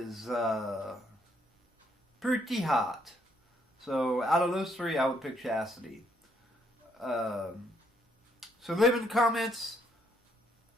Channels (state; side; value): normal; both; correlation 0.71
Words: pretty hot. So out of those three, I would pick Chastity. So leave in the comments